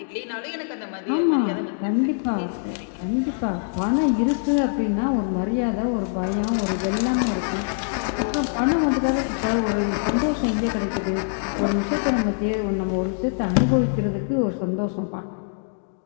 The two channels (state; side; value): silent; right; digital silence